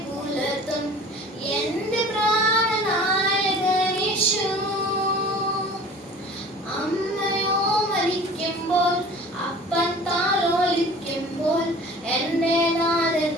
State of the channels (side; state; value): both; normal; correlation 0.44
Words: പുലർത്തും എന്റെ പ്രാണനായകൻ യേശു. അമ്മയോ മരിക്കുമ്പോൾ അപ്പൻ താലോലിക്കുമ്പോൾ എന്റെ നാഥൻ